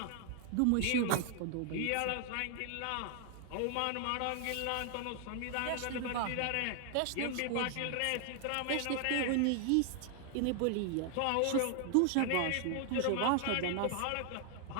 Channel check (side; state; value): both; different; correlation 0.00